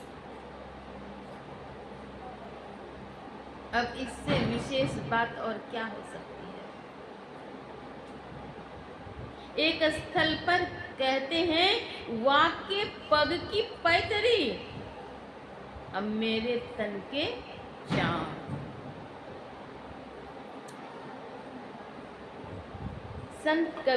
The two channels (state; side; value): identical; both; correlation 1.00